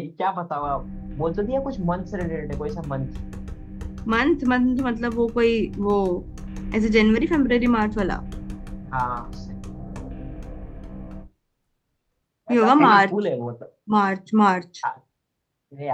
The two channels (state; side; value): identical; both; correlation 1.00